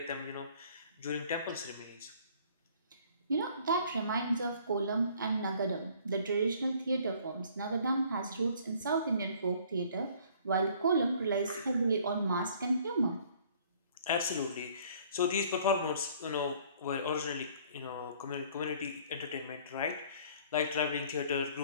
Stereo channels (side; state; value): both; inverted; correlation -0.56